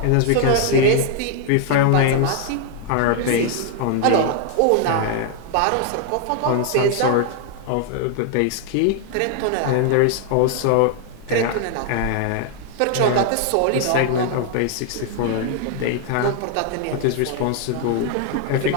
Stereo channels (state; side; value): different; both; correlation 0.00